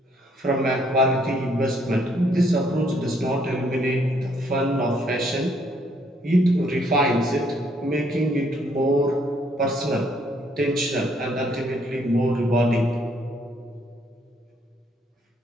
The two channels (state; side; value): normal; both; correlation 0.68